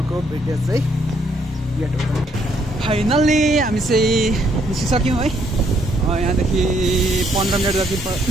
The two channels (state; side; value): normal; both; correlation 0.70